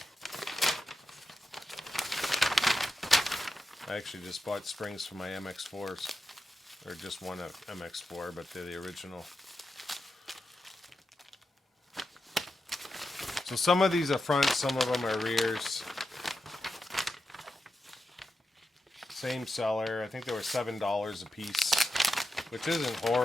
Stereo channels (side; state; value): both; normal; correlation 0.89